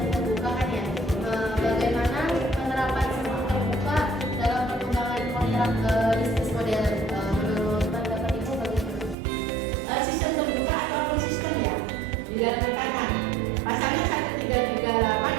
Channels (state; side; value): drops out; left; at 9.2 s